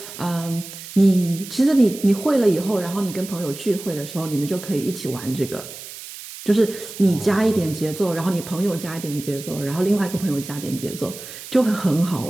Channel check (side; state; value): right; noise; hiss, 13 dB below the sound